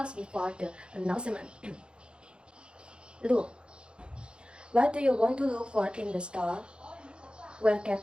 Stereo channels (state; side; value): late; left; 0.054 ms